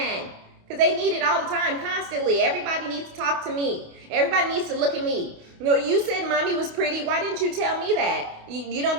because they need it all the time, constantly. Everybody needs to talk to me. Everybody needs to look at me. You said mommy was pretty. Why didn't you tell me that? You don't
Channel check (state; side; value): late; left; 28 ms